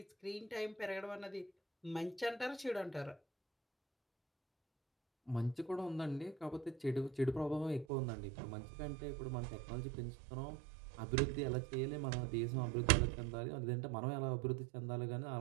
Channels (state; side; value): drops out; left; at 7.9 s